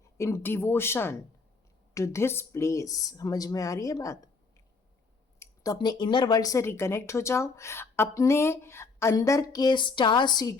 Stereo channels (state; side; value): quieter; right; 4.3 dB